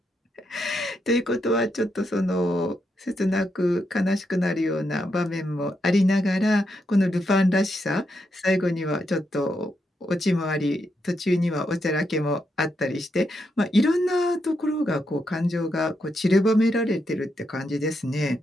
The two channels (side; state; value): both; normal; correlation 0.82